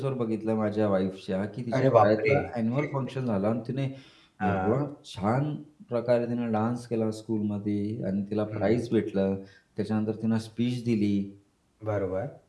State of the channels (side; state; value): both; identical; correlation 1.00